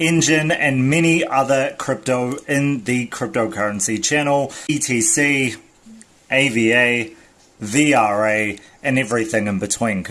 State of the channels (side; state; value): both; identical; correlation 1.00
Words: and many other crypto in the cryptocurrency channel, ETC, AVA, VRA, and everything in between.